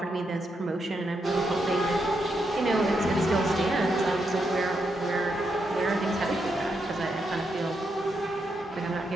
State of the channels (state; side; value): normal; both; correlation 0.82